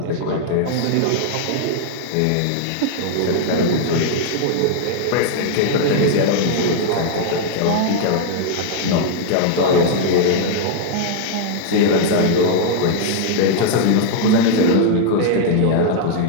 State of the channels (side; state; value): both; different; correlation -0.01